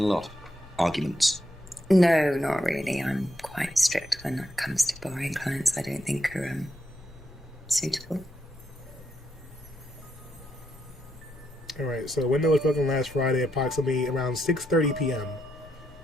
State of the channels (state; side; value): normal; both; correlation 0.81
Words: lot? Arguments? No, not really. I'm quite strict when it comes to borrowing clients I don't think are suitable. Alright, so the window was broken last Friday, approximately around 6:30 p.m.